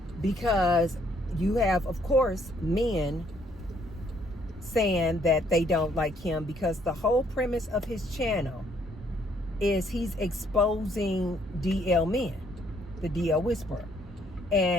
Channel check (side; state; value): both; normal; correlation 0.67